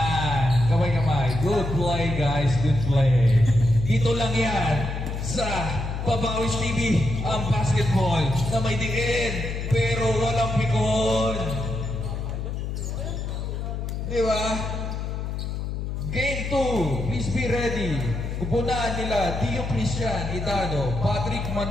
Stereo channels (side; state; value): left; noise; hum, 4 dB below the sound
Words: Kamay-kamay. Good play, guys. Good play. Dito lang yan sa Papawis TV ang basketball na may diin pero walang pikon. Di ba? Game 2. Please be ready. Upunan nila, Dio Christian Idano, Patrick